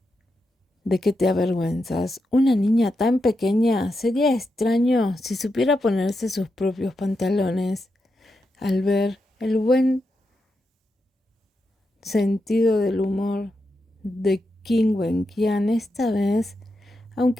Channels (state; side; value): normal; both; correlation 0.86